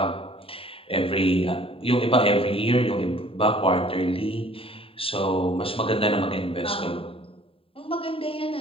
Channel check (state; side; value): late; right; 0.27 ms